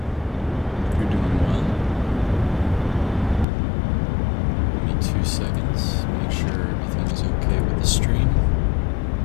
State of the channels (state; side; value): drops out; right; at 3.5 s